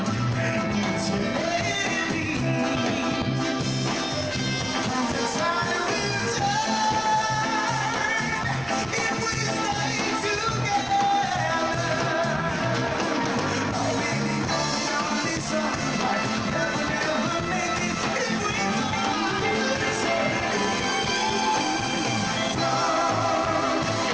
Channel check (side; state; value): right; noise; rumble, 20 dB below the sound